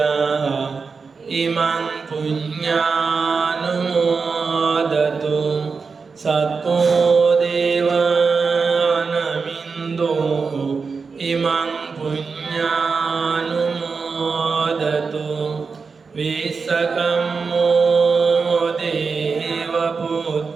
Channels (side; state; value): left; quieter; 4.9 dB